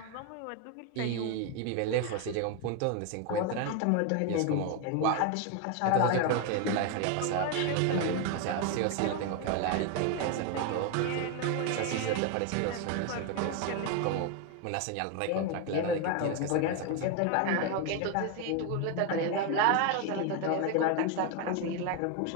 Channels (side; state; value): both; different; correlation 0.01